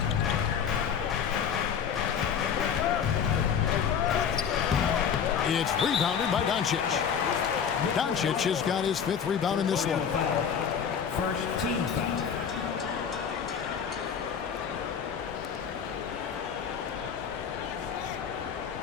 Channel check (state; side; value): quieter; right; 7.5 dB